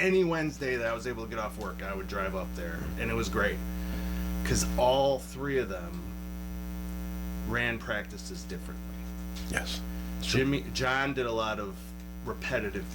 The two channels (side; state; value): both; identical; correlation 1.00